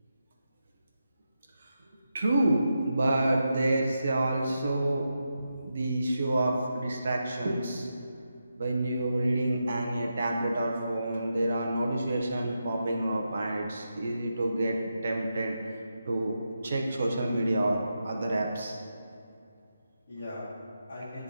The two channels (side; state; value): both; inverted; correlation -0.87